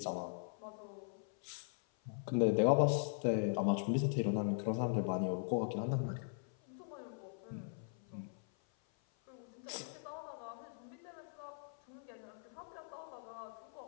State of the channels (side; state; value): right; silent; 51 dB below the other